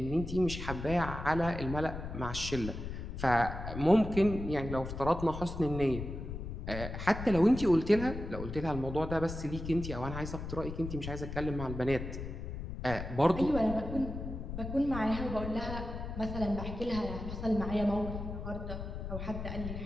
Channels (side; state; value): left; noise; rumble, 7 dB below the sound